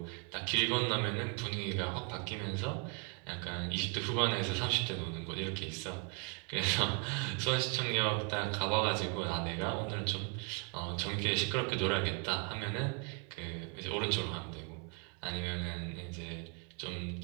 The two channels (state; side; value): quieter; left; 35.0 dB